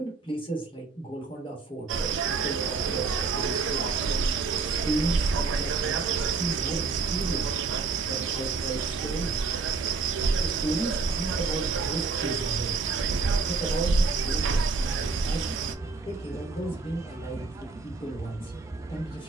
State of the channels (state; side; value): quieter; left; 4.4 dB